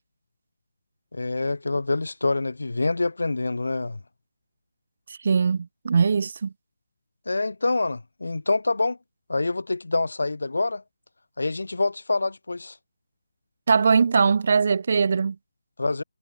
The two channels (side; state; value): both; inverted; correlation -0.91